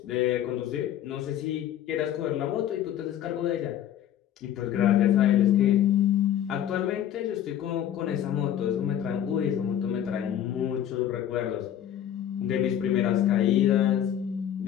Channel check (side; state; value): right; quieter; 10.6 dB